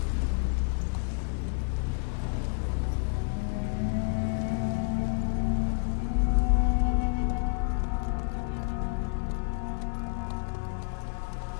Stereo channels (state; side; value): silent; right; digital silence